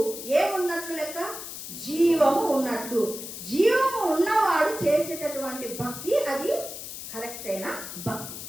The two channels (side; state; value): left; noise; hiss, 9 dB below the sound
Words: ఏమున్నట్లు లెక్క? జీవము ఉన్నట్లు. జీవము ఉన్నవాడు చేసేటటువంటి భక్తి అది కరెక్ట్ అయిన భక్తి.